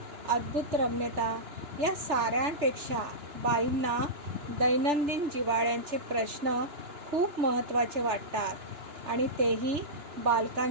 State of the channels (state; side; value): late; left; 3.4 ms